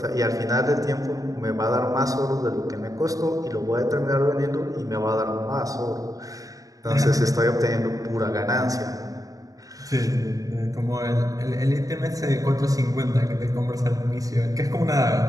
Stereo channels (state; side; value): late; left; 0.17 ms